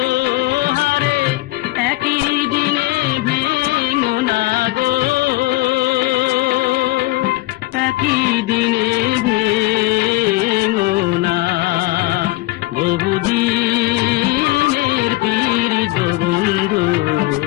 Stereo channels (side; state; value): right; quieter; 19.2 dB